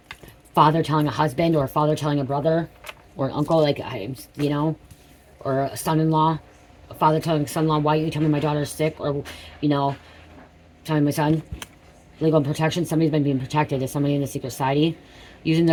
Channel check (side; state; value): both; identical; correlation 1.00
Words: Father telling a husband, or a father telling a brother, or an uncle, like, you know, or a son-in-law. A father telling a son-in-law, why didn't you tell me my daughter's sick? Or, you know, telling my son. Legal protection. Somebody's been being protected. Is somebody in the secret society. Using